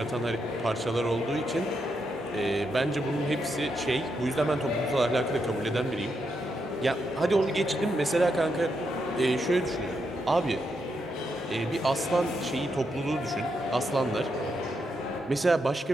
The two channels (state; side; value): normal; both; correlation 0.82